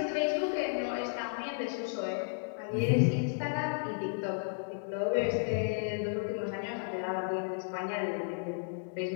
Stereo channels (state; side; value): silent; right; digital silence